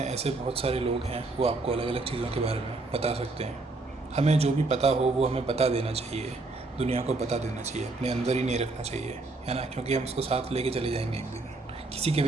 ऐसे बहुत सारे लोग हैं वो आपको अलग अलग चीज़ों के बारे में बता सकते हैं। हमें जो भी पता हो वो हमें बता देना चाहिए, दुनिया को बता देना चाहिए, अपने अंदर ही नहीं रखना चाहिए, है ना। क्योंकि हम उसको साथ लेके चले जाएंगे एक दिन, किसी के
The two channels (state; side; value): quieter; left; 3.3 dB